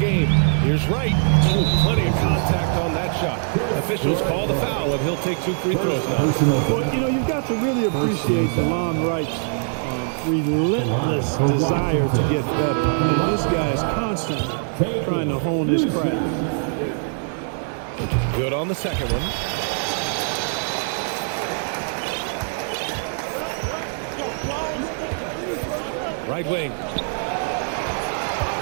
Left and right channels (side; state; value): left; silent; 64 dB below the other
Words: Here's Wright. Ooh, plenty of contact on that shot. Officials call the foul, and he'll take 2 free throws now. Well, you know, you've got to really appreciate DeLon Wright's relentless desire to get better. I mean, this guy is constantly trying to hone his craft. Good on the second one. Right wing.